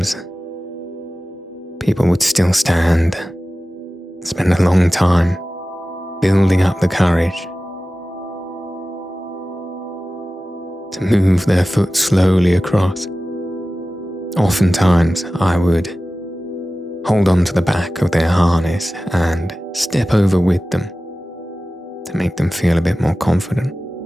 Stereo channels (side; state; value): both; normal; correlation 0.96